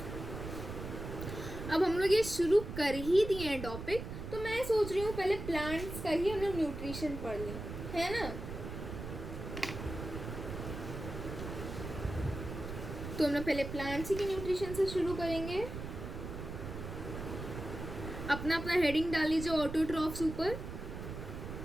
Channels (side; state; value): right; noise; rumble, 8 dB below the sound